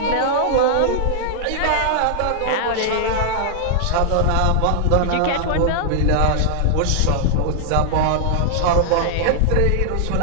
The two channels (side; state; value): both; different; correlation -0.01